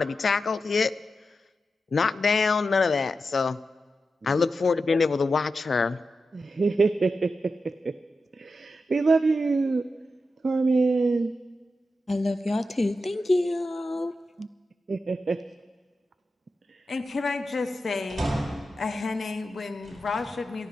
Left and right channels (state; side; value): normal; both; correlation 0.90